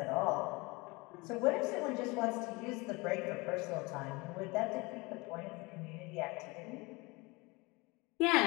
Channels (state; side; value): quieter; right; 25.2 dB